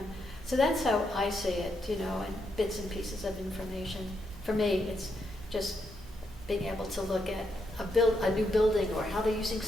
So that's how I see it, you know, and bits and pieces of information. For me, it's just being able to look at a new building, or how they're using,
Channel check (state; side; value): normal; both; correlation 0.80